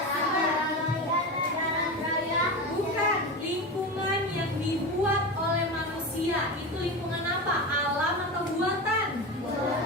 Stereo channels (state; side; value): normal; both; correlation 0.23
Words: Bukan, lingkungan yang dibuat oleh manusia. Itu lingkungan apa? Alam atau buatan?